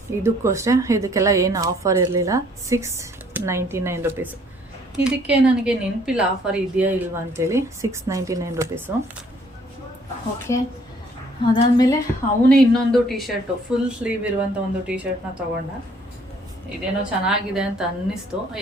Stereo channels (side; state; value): both; normal; correlation 0.61